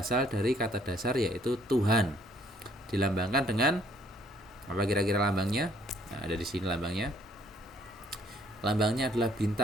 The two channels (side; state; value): both; normal; correlation 0.63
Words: dari kata dasar yaitu Tuhan. Dilambangkan dengan apa kira-kira lambangnya? Nah, ada di sini lambangnya. Lambangnya adalah